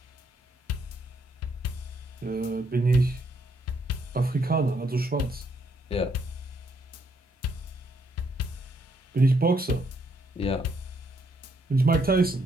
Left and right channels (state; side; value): normal; both; correlation 0.72